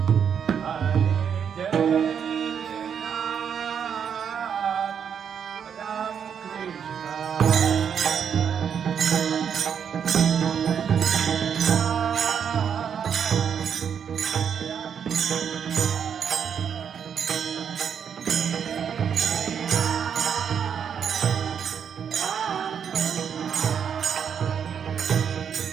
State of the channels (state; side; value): quieter; left; 7.7 dB